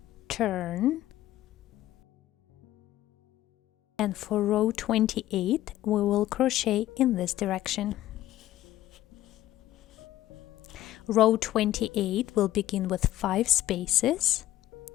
turn, and for row 28 we will crochet in this direction. Row 28 will begin with 5 spaces.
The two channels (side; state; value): right; quieter; 14.4 dB